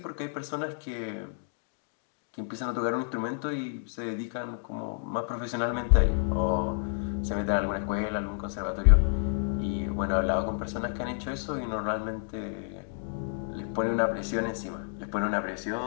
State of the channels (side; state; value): right; silent; digital silence